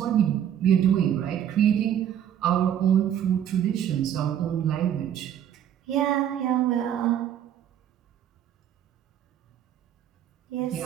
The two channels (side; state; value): left; quieter; 10.0 dB